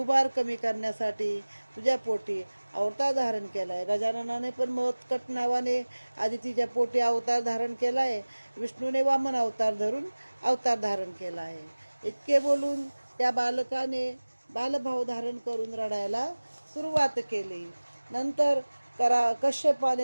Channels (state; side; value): inverted; both; correlation -1.00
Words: कमी करण्यासाठी तुझ्या पोटी अवतार धारण केलाय. गजाननाने पण मोत्कट नावाने आदितीच्या पोटी अवतार धारण केलाय. विष्णूने वामन अवतार धरून अवतार धारण केला आहे. इतके बोलून त्या बालकाने बालभाव धारण करून रडायला सुरुवात केली. नंतर